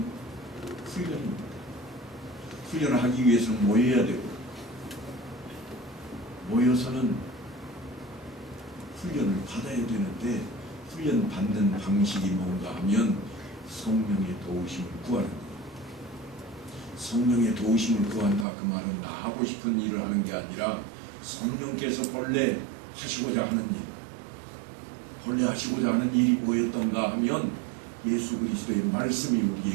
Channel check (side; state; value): left; drops out; at 18.4 s